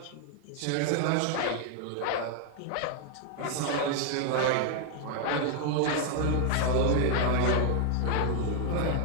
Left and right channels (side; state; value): both; different; correlation 0.00